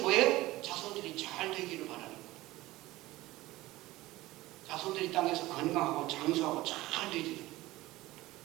뭐예요? 자손들이 잘 되기를 바라는 거예요. 자손들이 땅에서 건강하고 장수하고 잘 되기를.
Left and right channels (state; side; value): quieter; left; 18.2 dB